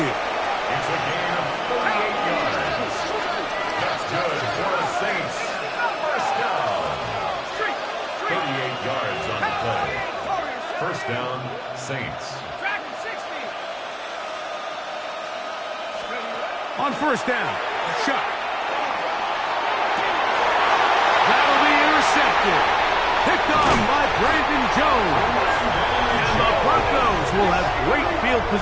It's a gain of 38 yards. That's good for the Saints. First down. 38 yards on the play. First down, Saints. On first down, Shuck. That'll be intercepted. Picked on by Brandon Jones. And the Broncos will have great field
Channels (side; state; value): both; identical; correlation 1.00